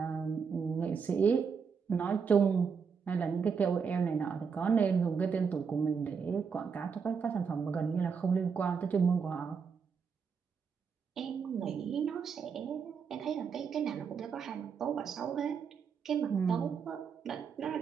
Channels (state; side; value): quieter; left; 6.1 dB